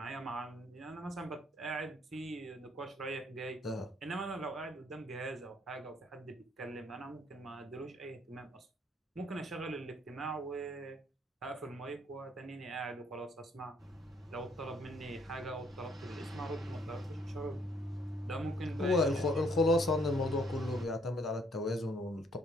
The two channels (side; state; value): both; normal; correlation 0.66